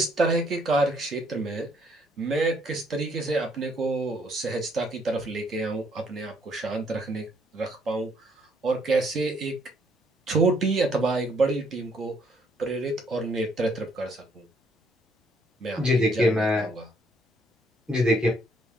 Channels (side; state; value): both; normal; correlation 0.68